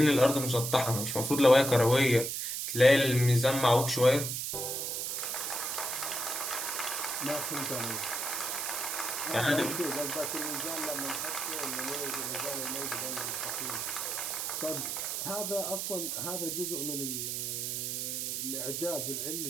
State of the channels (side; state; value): right; noise; hiss, 2 dB below the sound